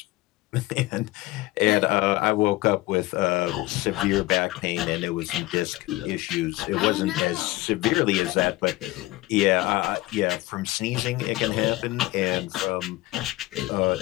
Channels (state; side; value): quieter; right; 19.0 dB